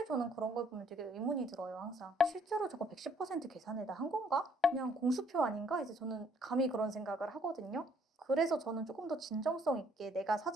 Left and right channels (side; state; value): both; normal; correlation 0.64